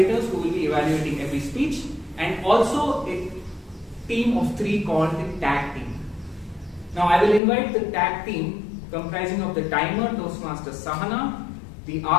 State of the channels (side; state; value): right; drops out; at 7.4 s